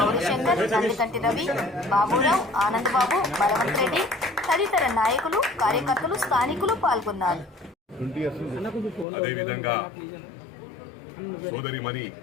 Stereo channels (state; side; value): drops out; right; at 9.1 s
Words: గౌరీశంకర్, నందికంటి రవి, బాబురావు, ఆనందబాబు, బలవంత్ రెడ్డి తదితర నాయకులు, కార్యకర్తలు, స్థానికులు పాల్గొన్నారు. అదేవిధంగా సోదరిమణి